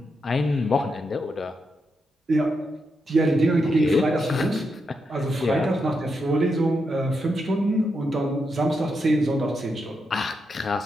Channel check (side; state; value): both; normal; correlation 0.84